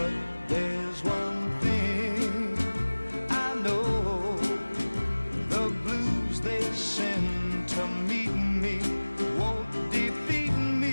there's one thing I know, the blues they send to meet me won't defeat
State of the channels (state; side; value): inverted; both; correlation -1.00